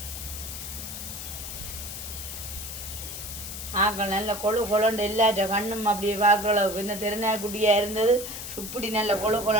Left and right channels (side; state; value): left; noise; hiss, 8 dB below the sound